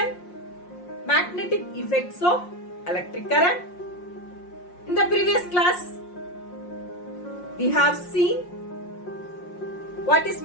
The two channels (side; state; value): right; late; 5.6 ms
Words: Magnetic Effects of Electric Current. In the previous class, we have seen what is